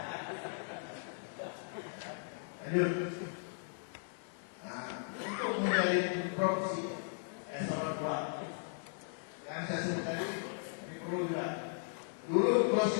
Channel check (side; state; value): right; silent; 53 dB below the other